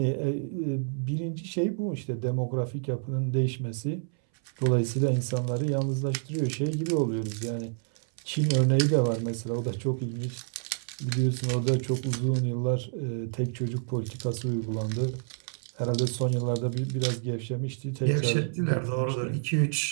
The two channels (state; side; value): silent; left; 59 dB below the other